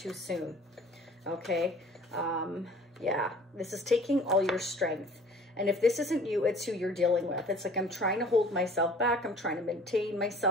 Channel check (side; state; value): both; normal; correlation 0.49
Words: soon. Okay? Yeah, this is taking all your strength. And if this isn't you, it's who you're dealing with. It's like I'm trying to hold myself back. I'm trying to maintain